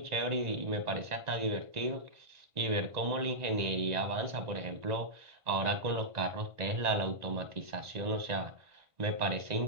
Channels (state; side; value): late; left; 1.9 ms